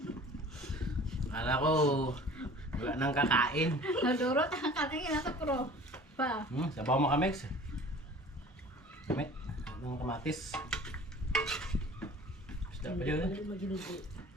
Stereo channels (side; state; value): both; normal; correlation 0.45